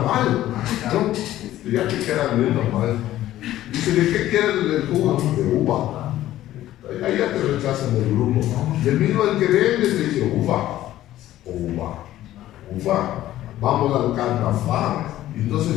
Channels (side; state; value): right; quieter; 14.0 dB